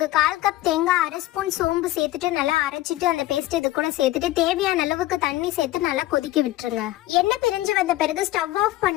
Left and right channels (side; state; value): right; quieter; 16.2 dB